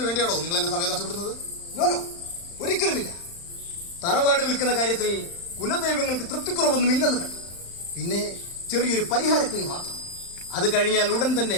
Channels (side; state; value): right; late; 35 ms